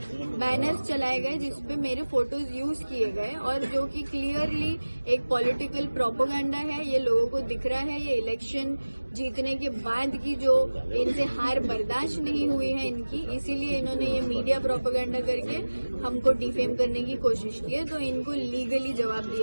बैनर्स चलाए गए जिसपे मेरे फोटोज यूज किए गए और जो कि क्लियरली एक पॉलिटिकल प्रोपेगेंडा है। ये लोगों को दिख रहा है, ये इलेक्शन जीतने के बाद की जो इनसे हार बर्दाश्त नहीं हुई है इनकी, इसीलिए इन्होंने ये मीडिया प्रोपेगेंडा करके हमको डिफेम करने की कोशिश की है, तो इनको लीगली जवाब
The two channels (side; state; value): both; inverted; correlation -1.00